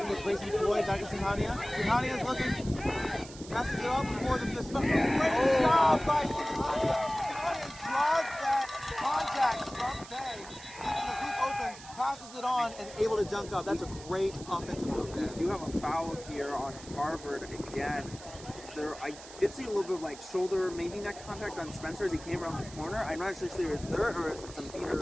It's racing Floyd back to Singhania. Singhania's looking. Passes it off before the great job by Singhania. Singhania draws that contact from Bay, leaving the hoop open, passes it on, and able to dunk up. That's a great offensive move there. We do have a foul here on Harvard again. I did see a little bit of like shoulder, maybe neck contact on Spencer as he came around the corner. I'm not actually sure if it's there or is it some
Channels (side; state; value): right; noise; hiss, 16 dB below the sound